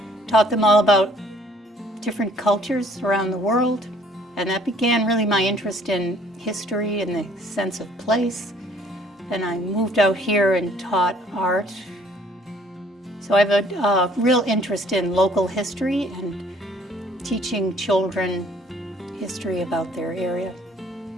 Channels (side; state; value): both; normal; correlation 0.59